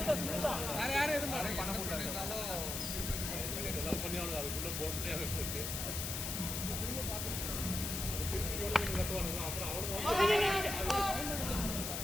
வேற யாரும் எதுவும் பண்ண முடியாது. பண்ணி அவனுக்கு அதுக்குள்ள போக முடியாம போச்சு. கட்டுவானுங்க அப்புறம் அவனுக்கு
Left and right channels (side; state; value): left; noise; hiss, 3 dB below the sound